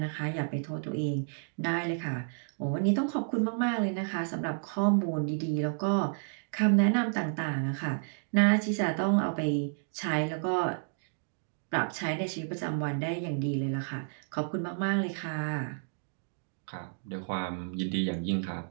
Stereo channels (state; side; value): silent; left; digital silence